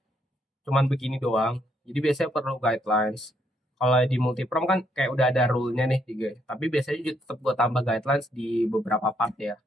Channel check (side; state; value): both; normal; correlation 0.73